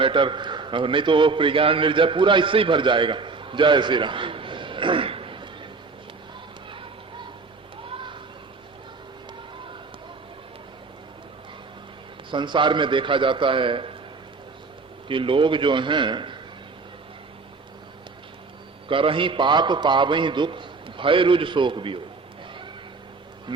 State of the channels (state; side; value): quieter; left; 4.2 dB